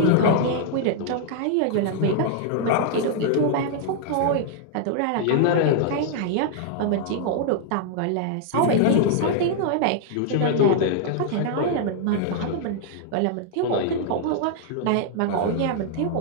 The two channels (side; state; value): both; different; correlation 0.00